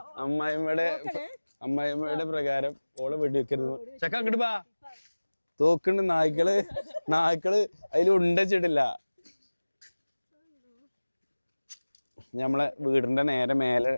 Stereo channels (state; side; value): inverted; both; correlation -1.00